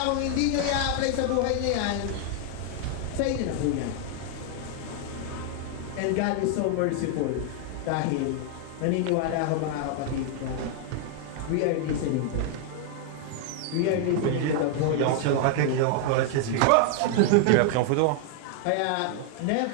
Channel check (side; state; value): both; different; correlation 0.00